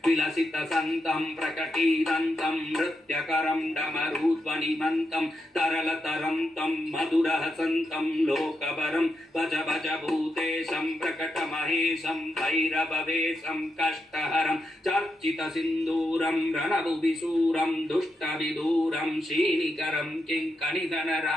विलसितसन्तं प्रकटीरन्तं नृत्यकरं डमरुध्वनिमन्तं तरलतरं तं मधुरहसन्तं लोकवरं भज भज भूतेशं प्रकटमहेशं भैरववेशं कष्टहरं चर्चितसिन्दूरं रणभुविशूरं दुष्टविदूरं श्रीनिकरं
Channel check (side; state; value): both; normal; correlation 0.84